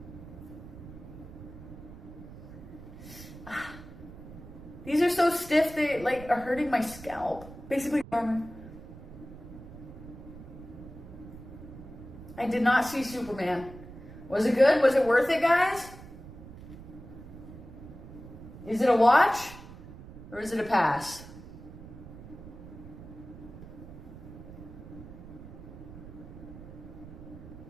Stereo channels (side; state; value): right; noise; rumble, 15 dB below the sound